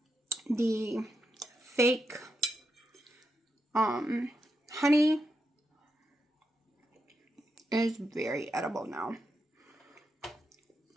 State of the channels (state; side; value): normal; both; correlation 0.84